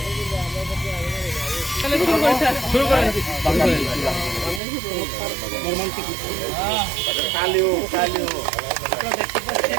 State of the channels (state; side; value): drops out; left; at 4.6 s